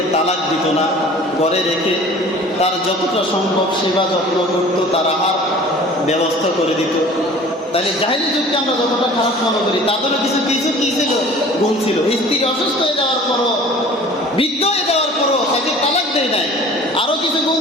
তালাক দিত না, ঘরে রেখে তার যতটা সম্ভব সেবা যত্ন করত, তারা আর ব্যবস্থা করে দিত। তাহলে জাহেলি যুগকে আমরা যতটা খারাপ মনে করি, তাদেরও কিছু কিছু কি ছিল, গুণ ছিল। স্ত্রী অসুস্থ হয়ে যাওয়ার পরও, বৃদ্ধ হয়ে যাওয়ার পরও তাকে তালাক দেয় নাই। আরও কিছু গুণ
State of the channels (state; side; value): normal; both; correlation 0.45